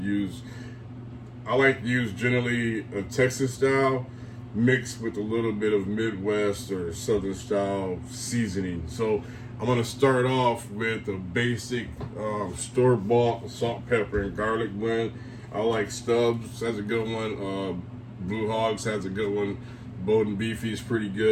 use. I like to use generally a Texas style mixed with a little bit of Midwest or Southern style seasoning. So I'm gonna start off with a basic store-bought salt, pepper, and garlic blend. I like Stubbs, has a good one. Blue Hogs has a good one. Bowden Beefy is pretty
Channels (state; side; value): identical; both; correlation 1.00